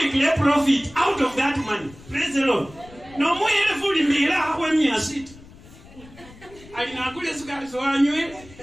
kile profit out of that money. Praise the Lord. No mo yele fuli mira ho mia sit ali na kule sukari so anywe.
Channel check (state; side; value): noise; left; rumble, 21 dB below the sound